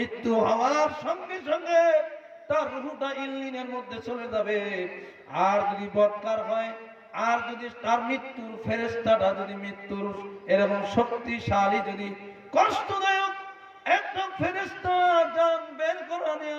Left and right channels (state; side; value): identical; both; correlation 1.00